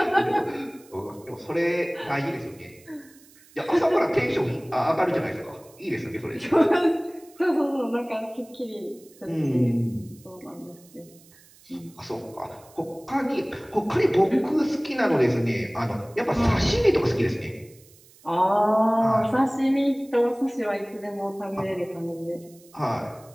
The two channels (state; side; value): noise; right; hiss, 26 dB below the sound